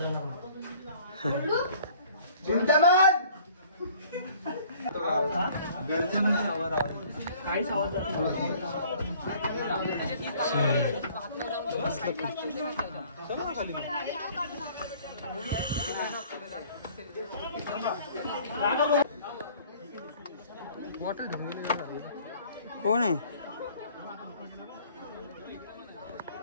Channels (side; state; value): both; inverted; correlation -0.54